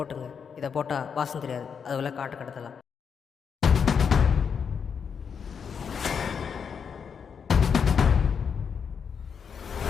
இதை போட்டால் வாசம் தெரியாது, அதுக்குள்ளே காட்டு கடத்தலாம்.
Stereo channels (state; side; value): quieter; right; 6.7 dB